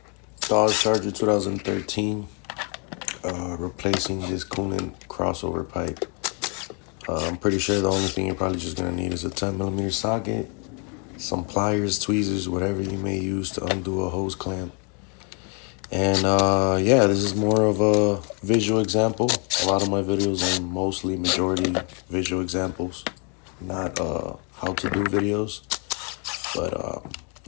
Dodge Charger 2013, replacing this coolant crossover pipe. I'm pretty sure the only thing you're probably just gonna need is a 10mm socket, some pliers, tweezers, whatever you may use to undo a hose clamp. And yeah, this is more of a visual example. A lot of my videos are mostly majority visual examples, not how to do videos. But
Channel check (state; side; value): quieter; right; 37.0 dB